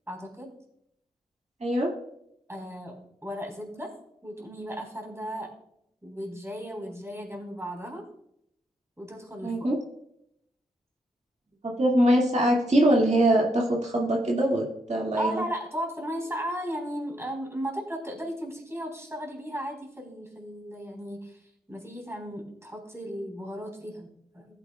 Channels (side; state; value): both; normal; correlation 0.77